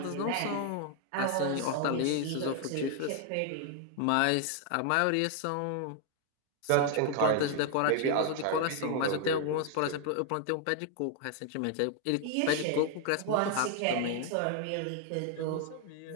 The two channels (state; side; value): different; both; correlation 0.00